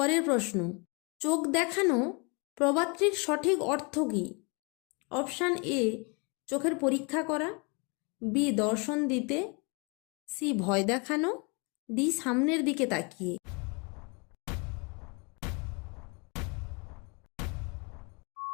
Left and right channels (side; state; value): right; quieter; 32.0 dB